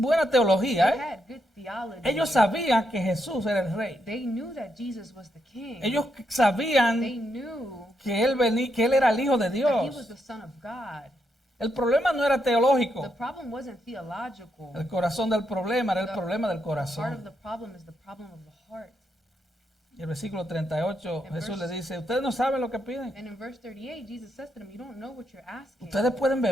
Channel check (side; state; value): both; normal; correlation 0.80